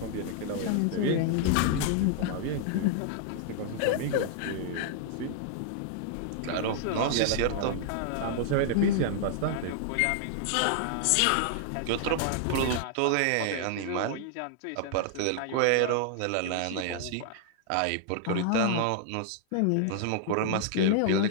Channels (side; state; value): both; different; correlation -0.01